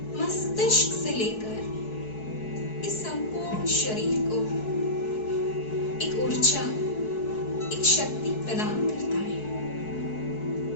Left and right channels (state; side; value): late; right; 4.6 ms